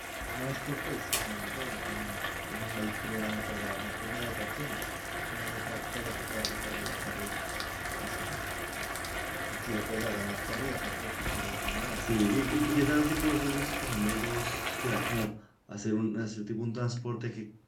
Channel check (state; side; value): identical; both; correlation 1.00